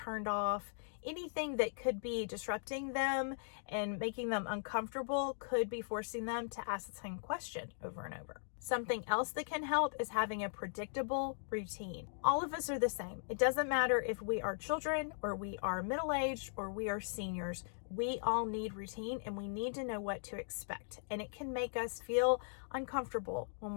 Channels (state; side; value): silent; right; digital silence